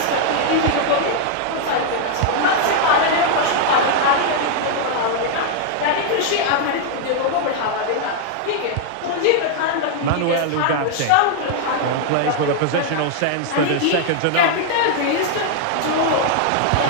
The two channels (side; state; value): both; different; correlation 0.00